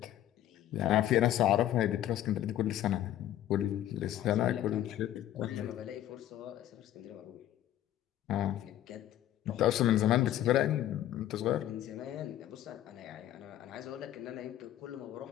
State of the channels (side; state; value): right; quieter; 12.4 dB